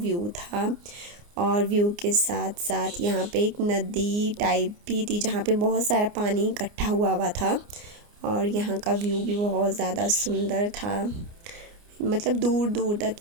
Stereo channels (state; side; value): late; left; 29 ms